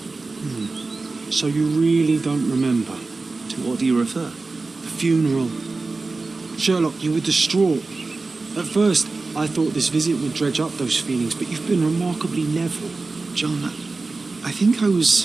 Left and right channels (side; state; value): left; quieter; 3.7 dB